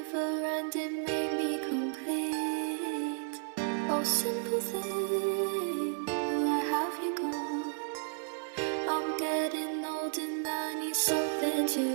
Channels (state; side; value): silent; left; 56 dB below the other